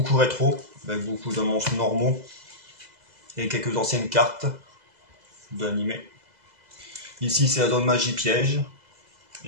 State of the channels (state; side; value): late; left; 2.0 ms